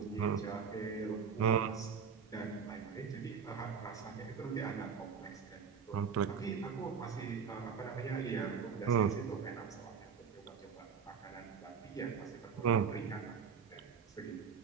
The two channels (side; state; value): left; quieter; 6.5 dB